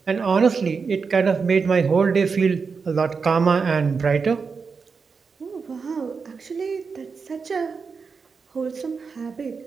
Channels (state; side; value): quieter; left; 5.2 dB